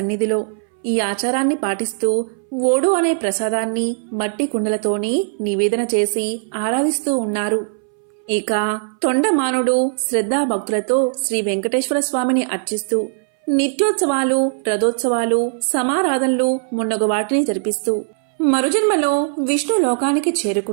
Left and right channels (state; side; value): silent; left; 63 dB below the other